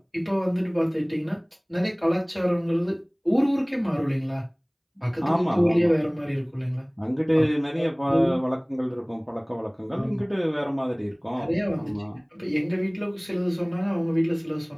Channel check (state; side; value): identical; both; correlation 1.00